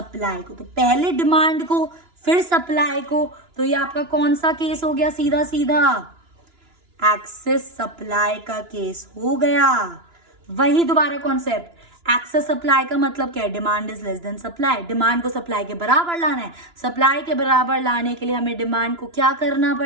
को। तो पहले डिमांड को फिर सप्लाई को, तो ये आपका कौन सा केस हो गया, सीधा सीधा एक्सेस सप्लाई का केस हो गया। वही दोबारा कॉन्सेप्ट, एक्सेस सप्लाई का मतलब क्या है, demand is less then supply, demand को सप्लाई के बराबर लाना है, सप्लाई के बराबर लाने के लिए हमें डिमांड को क्या करना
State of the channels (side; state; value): left; late; 2.9 ms